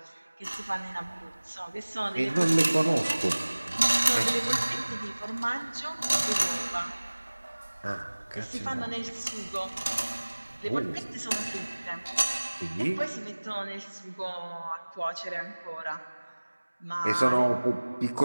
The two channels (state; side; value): inverted; both; correlation -1.00